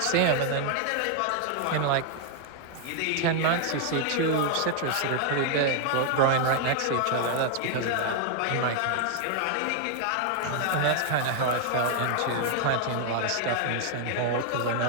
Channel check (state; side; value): different; both; correlation 0.00